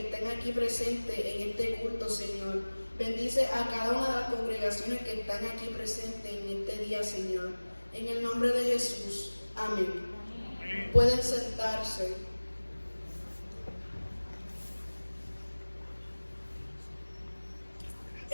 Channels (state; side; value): inverted; both; correlation -1.00